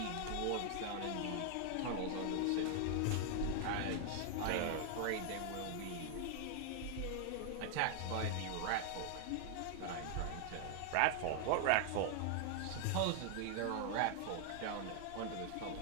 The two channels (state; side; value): different; both; correlation 0.00